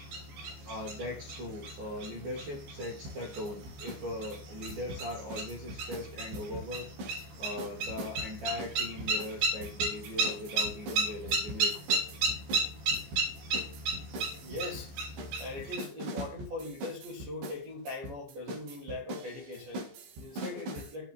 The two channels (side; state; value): left; late; 15 ms